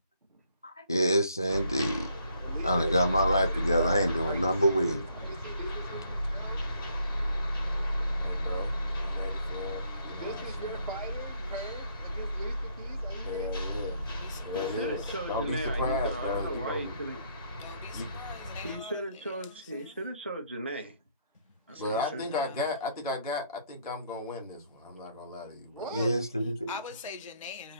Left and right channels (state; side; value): inverted; both; correlation -0.69